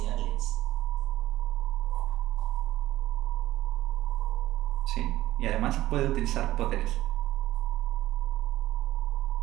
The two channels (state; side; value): quieter; left; 15.3 dB